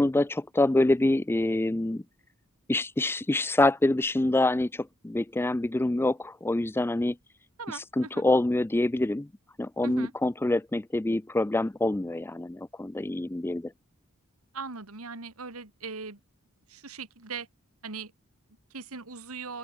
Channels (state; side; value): normal; both; correlation 0.84